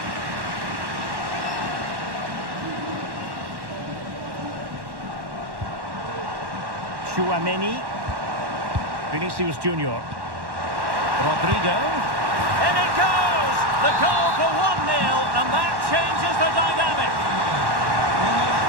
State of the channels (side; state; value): left; late; 1.1 ms